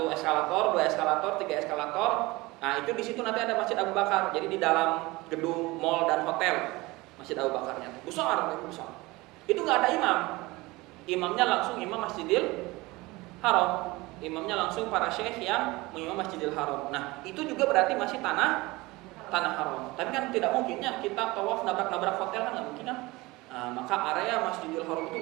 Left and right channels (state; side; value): quieter; left; 21.7 dB